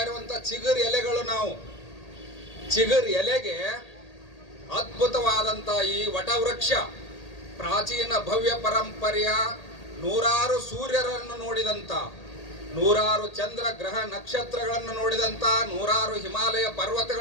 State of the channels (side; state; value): right; late; 1.8 ms